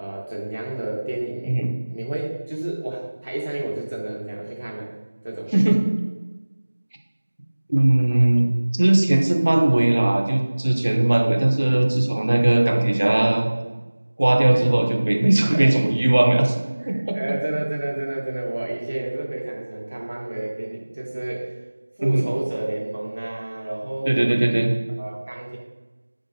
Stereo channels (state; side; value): inverted; both; correlation -1.00